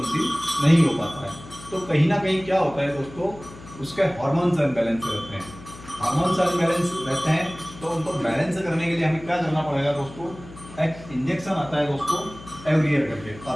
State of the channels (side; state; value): left; noise; hum, 17 dB below the sound